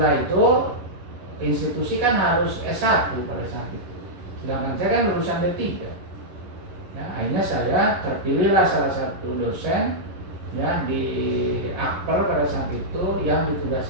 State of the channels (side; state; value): left; late; 11 ms